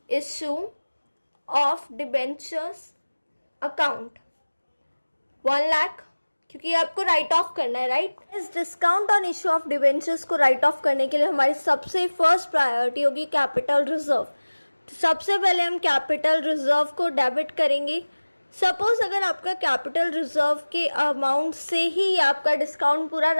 issue of debentures account 1 lakh, क्योंकि आपको राइट ऑफ करना है, राइट। इस discount on issue of debentures को राइट ऑफ करने के लिए हमारी सबसे फर्स्ट प्रायोरिटी होगी कैपिटल रिजर्व। तो सबसे पहले हम कैपिटल रिजर्व को डेबिट करेंगे। सपोज अगर आपका कैपिटल रिजर्व के अमाउंट से ही आपका डिस्काउंट पूरा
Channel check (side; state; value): both; inverted; correlation -1.00